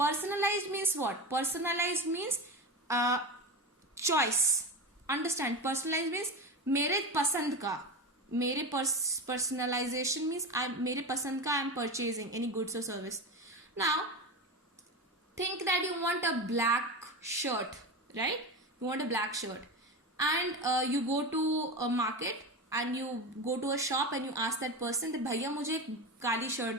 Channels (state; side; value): normal; both; correlation 0.23